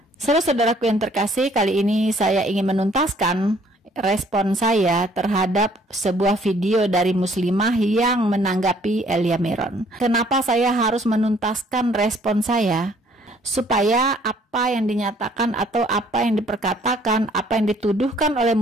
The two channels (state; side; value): normal; both; correlation 0.61